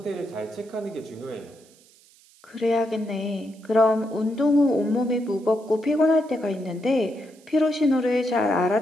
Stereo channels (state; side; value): noise; right; hiss, 28 dB below the sound